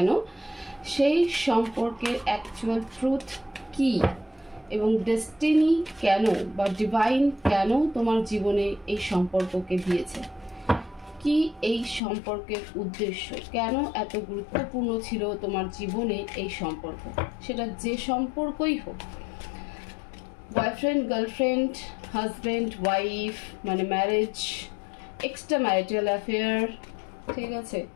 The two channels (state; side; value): drops out; right; at 12.0 s